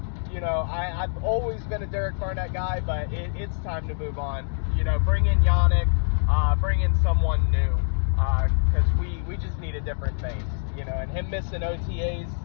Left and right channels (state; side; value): silent; right; digital silence